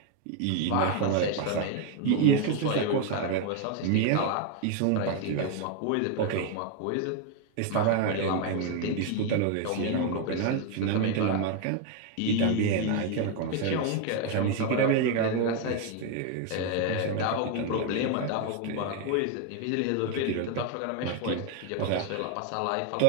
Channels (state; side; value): different; both; correlation 0.01